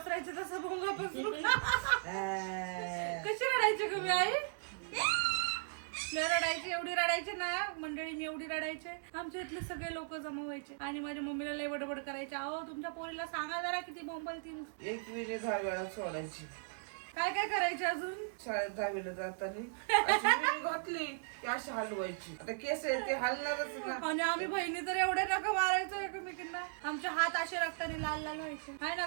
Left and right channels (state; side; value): silent; left; 53 dB below the other